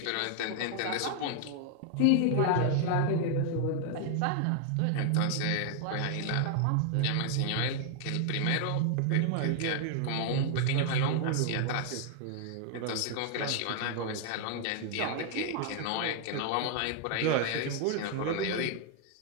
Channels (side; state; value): both; different; correlation 0.00